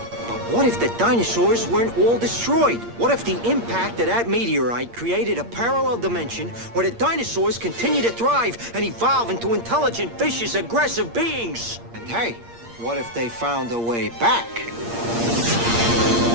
But what if the dinosaurs weren't all destroyed? What if the impact of that meteorite created a parallel dimension where the dinosaurs continue to thrive and evolve into intelligent, vicious, aggressive beings? And hey, what if they found a way back?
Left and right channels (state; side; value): late; left; 8.6 ms